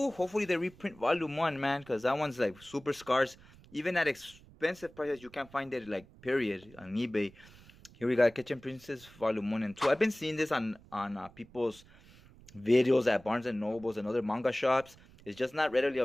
Hopefully they reprint Volume 1, man, because that one's like super scarce. Even at expensive prices, you can't find it, like, period, on eBay. Here we got Kitchen Princess Volume 1 and 2. I've been seeing this on people's videos at Barnes and Nobles and other manga shops. It's just not readily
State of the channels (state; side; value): noise; right; rumble, 23 dB below the sound